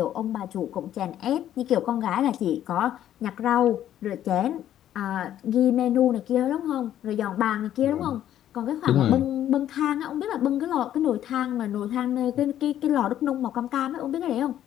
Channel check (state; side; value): quieter; right; 11.5 dB